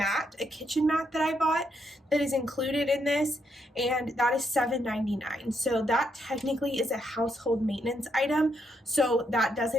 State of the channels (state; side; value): normal; both; correlation 0.77